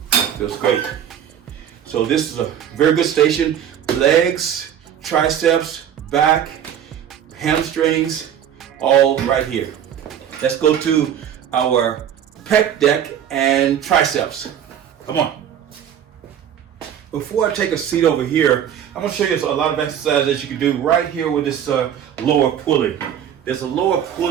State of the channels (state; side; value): quieter; left; 9.4 dB